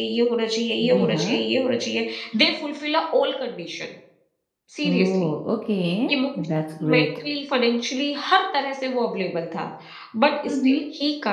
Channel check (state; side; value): identical; both; correlation 1.00